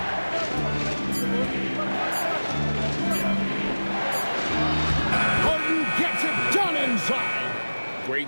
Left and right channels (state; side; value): inverted; both; correlation -1.00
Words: Harden gets it done inside. Great